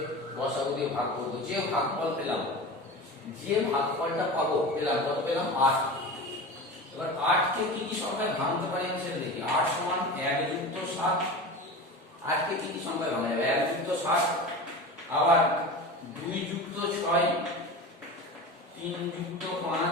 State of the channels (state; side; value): normal; both; correlation 0.30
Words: গসাগু দিয়ে ভাগ করব। যে ভাগফল পেলাম, যে ভাগফলটা পাবো পেলাম কত পেলাম 8। এবার 8 কে কি কি সংখ্যায় ভাঙতে পারি আমি সেটা দেখি। 8 সমান 1 যুক্ত 7। 8 কে কি কি সংখ্যায় ভাঙা যাবে? 1 যুক্ত 7, আবার 2 যুক্ত 6, 3 যুক্ত